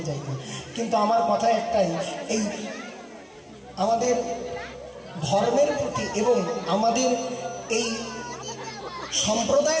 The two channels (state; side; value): identical; both; correlation 1.00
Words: যাই না। কিন্তু আমার কথা একটাই, এই আমাদের ধর্মের প্রতি এবং আমাদের এই